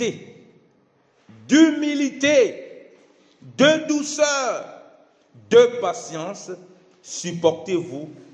d'humilité, de douceur, de patience, supportez-vous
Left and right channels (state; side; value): identical; both; correlation 1.00